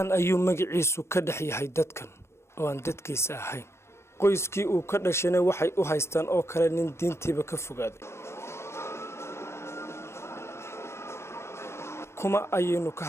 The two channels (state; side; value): late; right; 0.13 ms